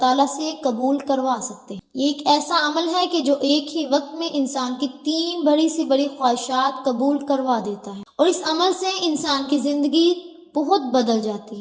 سے قبول کروا سکتے ہیں۔ یہ ایک ایسا عمل ہے کہ جو ایک ہی وقت میں انسان کی 3 بڑی سی بڑی خواہشات قبول کروا دیتا ہے، اور اس عمل سے انسان کی زندگی بہت بدل جاتی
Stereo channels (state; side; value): identical; both; correlation 1.00